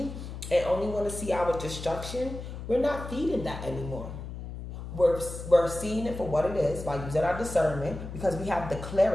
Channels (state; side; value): noise; left; hum, 9 dB below the sound